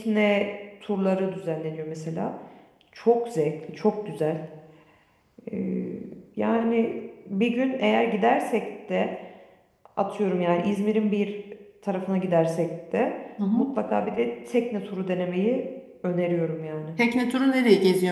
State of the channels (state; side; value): identical; both; correlation 1.00